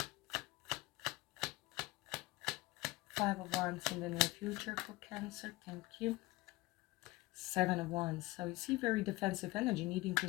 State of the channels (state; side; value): quieter; right; 20.5 dB